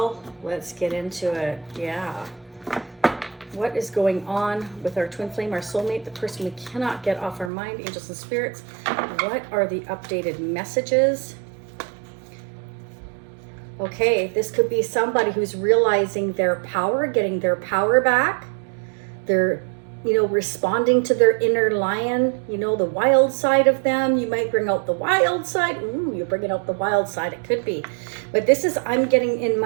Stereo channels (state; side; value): drops out; left; at 7.5 s